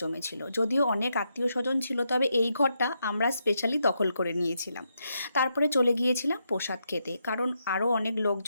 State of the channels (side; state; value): both; inverted; correlation -0.81